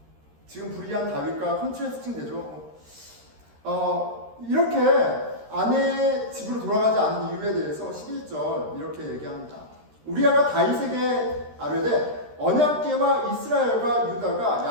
지금 불의한 다윗과 컨트레스팅 되죠. 이렇게 아내의 집으로 돌아가지 않은 이유에 대해서 11절 이렇게 얘기합니다. 우리아가 다윗에게 아뢰되 언약궤와 이스라엘과 유다가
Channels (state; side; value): late; left; 13 ms